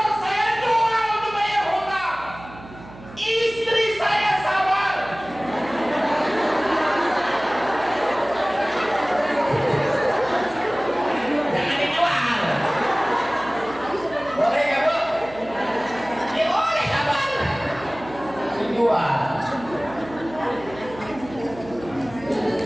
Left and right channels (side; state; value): right; noise; hum, 18 dB below the sound